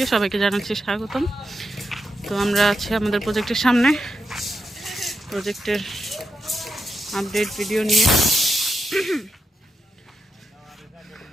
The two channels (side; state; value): both; normal; correlation 0.85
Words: সবাইকে জানাচ্ছি স্বাগতম। তো আমরা আছি আমাদের প্রজেক্টের সামনে, প্রজেক্টের আপডেট ভিডিও নিয়ে।